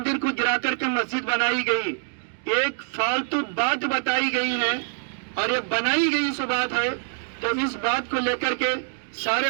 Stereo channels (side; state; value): left; silent; 62 dB below the other